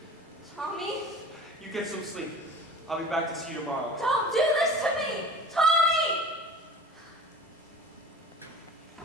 Tommy, You get some sleep. I'll be back to see you tomorrow. don't do this to me. Tommy!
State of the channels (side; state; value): both; normal; correlation 0.39